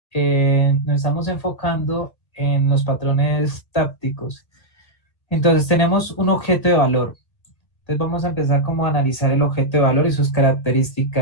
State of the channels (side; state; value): right; late; 1.9 ms